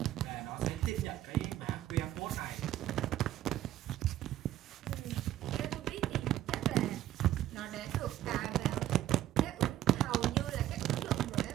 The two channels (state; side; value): quieter; left; 13.2 dB